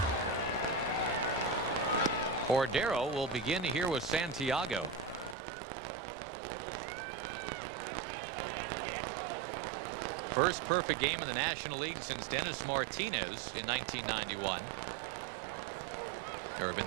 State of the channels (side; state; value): left; drops out; at 5.4 s